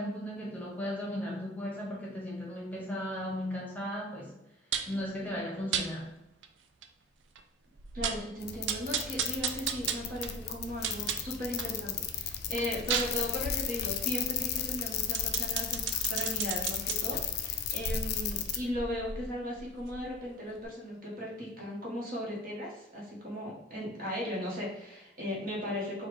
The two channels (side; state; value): both; normal; correlation 0.34